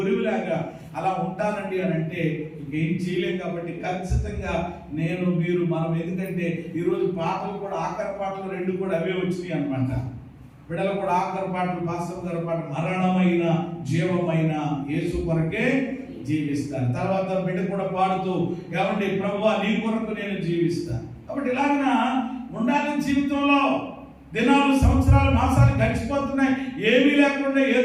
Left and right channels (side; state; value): both; identical; correlation 1.00